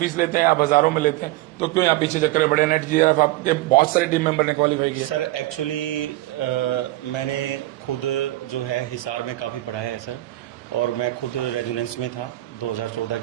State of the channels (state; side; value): quieter; left; 17.4 dB